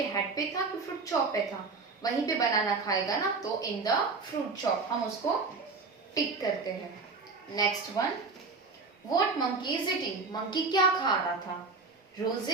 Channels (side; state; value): left; quieter; 4.1 dB